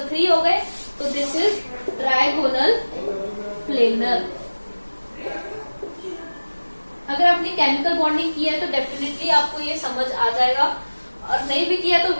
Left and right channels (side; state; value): both; inverted; correlation -1.00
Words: 3 हो गए, तो दिस इज ट्राइगोनल प्लेनर। अगर आपने केमिकल बॉन्डिंग किया है तो डेफिनेटली आपको ये समझ आ जाएगा, और नहीं भी किया तो